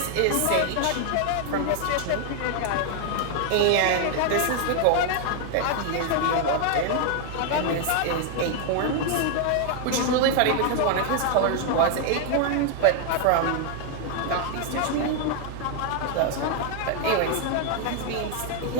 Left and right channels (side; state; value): both; different; correlation 0.00